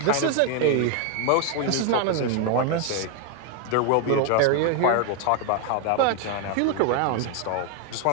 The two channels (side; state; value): both; different; correlation 0.01